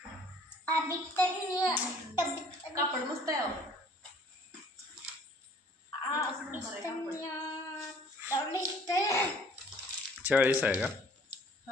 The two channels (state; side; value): normal; both; correlation 0.55